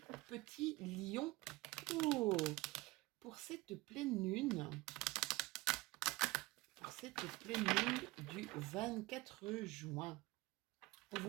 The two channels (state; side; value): quieter; left; 20.8 dB